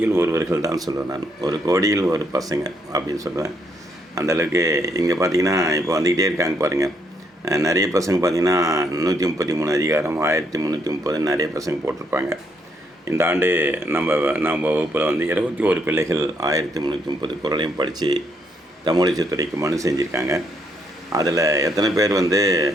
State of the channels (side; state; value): both; normal; correlation 0.73